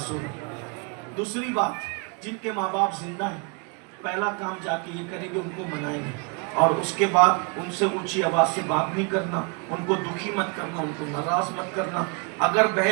دوسری بات، جن کے ماں باپ زندہ ہیں پہلا کام جا کے یہ کریں گے، ان کو منائیں گے. اور اس کے بعد ان سے اونچی آواز سے بات نہیں کرنا، ان کو دکھی مت کرنا، ان کو ناراض مت کرنا. اگر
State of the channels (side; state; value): left; quieter; 33.5 dB